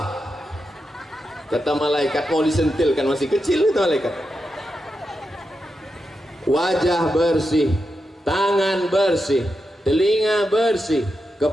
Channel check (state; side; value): normal; both; correlation 0.87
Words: Kata malaikat, mau disentilkan, masih kecil itu malaikat. Wajah bersih, tangan bersih, telinga bersih,